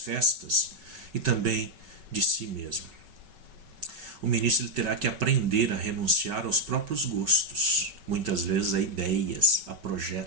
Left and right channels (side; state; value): left; late; 5.3 ms